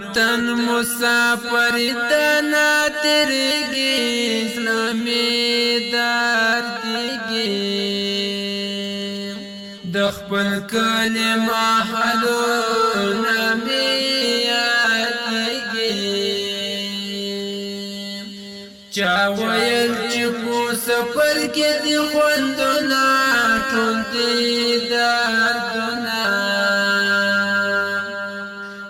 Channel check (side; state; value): both; identical; correlation 1.00